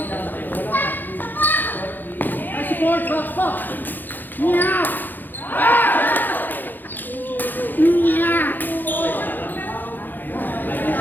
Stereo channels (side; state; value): right; late; 0.088 ms